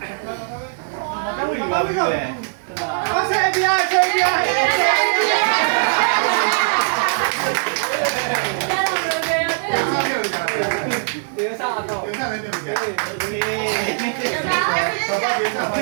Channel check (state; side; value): silent; left; 62 dB below the other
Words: ်ဘူးပါဘူးလေအဆင်ပြေဆင်ပြေဒေသစားတော့ဒေသလည်းပြန်ပြန်ဘာဘာဒေသဘ